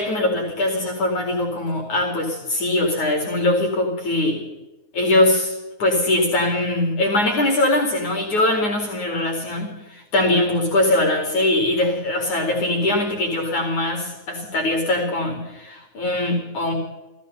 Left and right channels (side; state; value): right; late; 9.6 ms